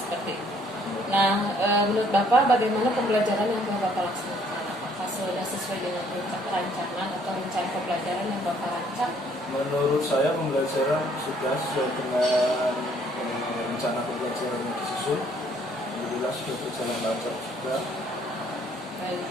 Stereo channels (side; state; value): both; normal; correlation 0.63